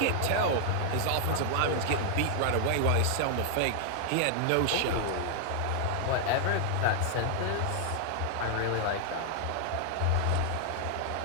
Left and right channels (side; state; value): both; different; correlation 0.00